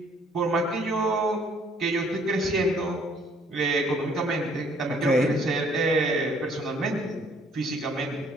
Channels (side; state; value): both; normal; correlation 0.61